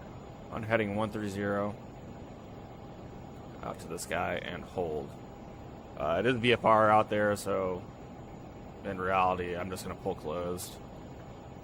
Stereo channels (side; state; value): both; identical; correlation 1.00